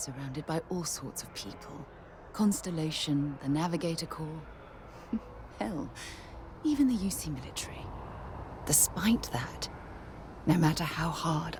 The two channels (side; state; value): both; identical; correlation 1.00